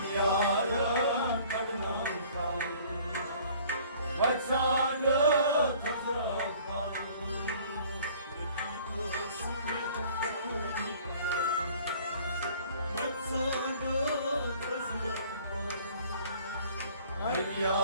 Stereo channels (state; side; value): inverted; both; correlation -0.53